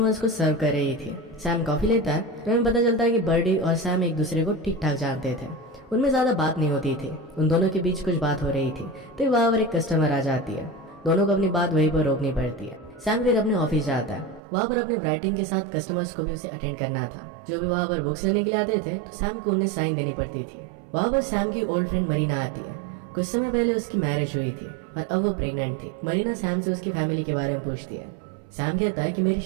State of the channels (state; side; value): drops out; left; at 14.4 s